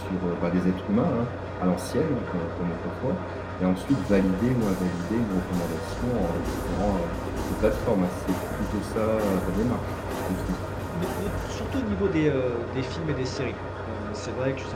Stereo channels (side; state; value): both; identical; correlation 1.00